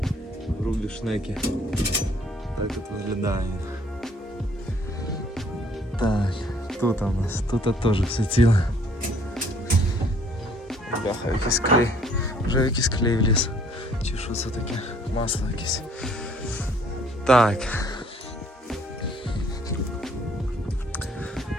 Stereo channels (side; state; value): both; normal; correlation 0.61